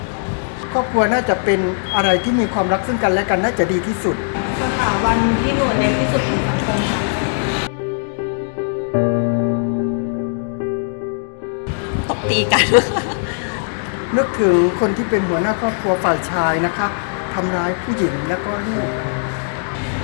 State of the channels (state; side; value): silent; right; digital silence